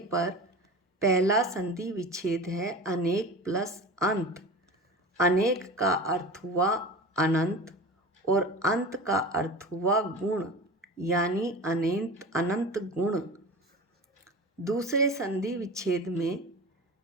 पर। पहला संधि विच्छेद है अनेक प्लस अंत। अनेक का अर्थ हुआ अनंत और अंत का अर्थ हुआ गुण, यानी अनंत गुण। दूसरे संधि विच्छेद में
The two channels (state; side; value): normal; both; correlation 0.32